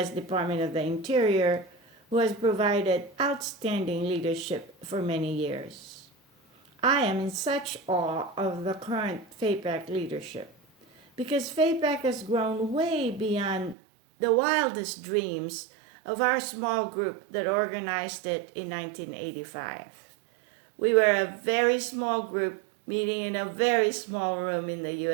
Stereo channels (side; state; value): left; drops out; at 13.8 s